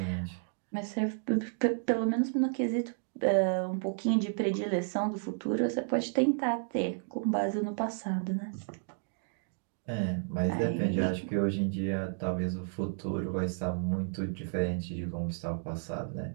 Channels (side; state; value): left; silent; digital silence